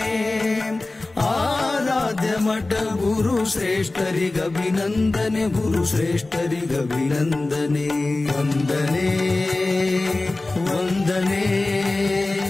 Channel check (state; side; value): quieter; right; 3.0 dB